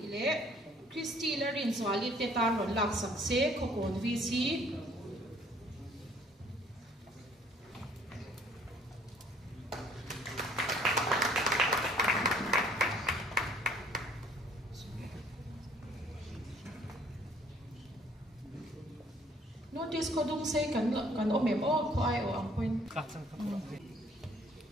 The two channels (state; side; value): normal; both; correlation 0.59